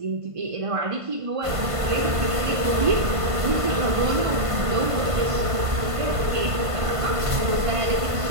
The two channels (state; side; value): late; left; 1.5 ms